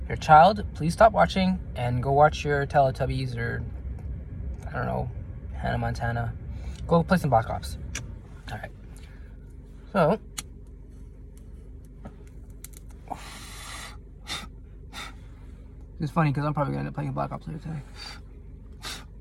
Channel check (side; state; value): both; identical; correlation 1.00